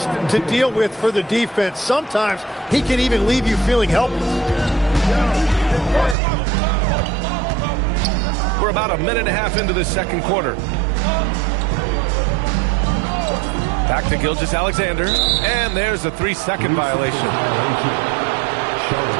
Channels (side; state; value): left; drops out; at 6.2 s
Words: to deal with for the defense. Sometimes he can even leave you feeling helpless. We're about a minute and a half into the second quarter. Back to Gilgeous-Alexander, and there's a 3-second violation.